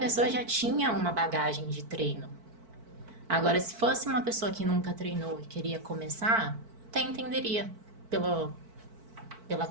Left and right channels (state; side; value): late; left; 4.5 ms